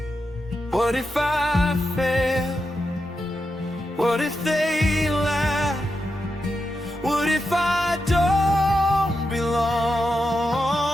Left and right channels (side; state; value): both; normal; correlation 0.87